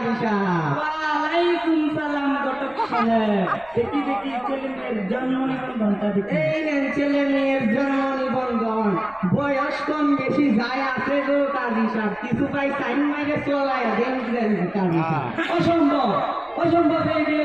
সাহেব। ওয়ালাইকুম সালাম ঘটক সাহেব। দেখি দেখি ছেলে মেয়ের জন্ম নিবন্ধনটা দেখি। এই নেন ছেলে মেয়ের জন্ম নিবন্ধন। বয়স কম বেশি যায় আছে গো কাজী সাহেব, কিছু পাই সাইন মাইরে চলায় দেন দেন কাজী সাহেব। অসম্ভব অসম্ভব, এই বিয়ে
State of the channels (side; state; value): right; noise; rumble, 28 dB below the sound